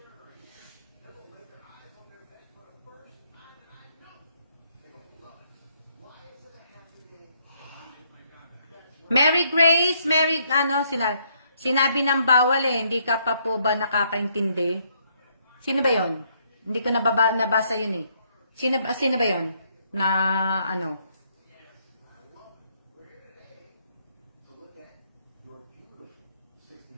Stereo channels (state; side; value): inverted; both; correlation -0.71